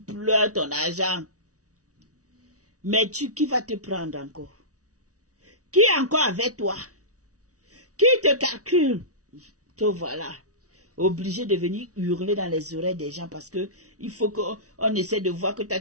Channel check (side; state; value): left; late; 0.67 ms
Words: ton argent. Mais qui va te prendre encore? Qui est encore avec toi? Qui te calcule? Te voilà. Obligé de venir hurler dans les oreilles des gens parce que il faut qu'on essaie de voir que toi